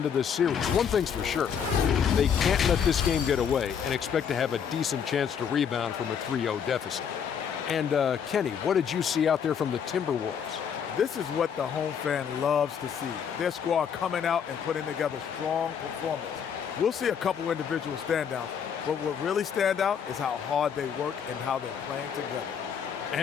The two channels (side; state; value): right; quieter; 7.6 dB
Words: this series. One thing's for sure, they can't let this game get away and expect to have a decent chance to rebound from a 3-0 deficit. And Kenny, what did you see out there from the Timberwolves? This is what the home fan loves to see. Their squad coming out and putting together strong performance. We'll see a couple individual standouts, but what really stand out is how hard they work and how they're playing together.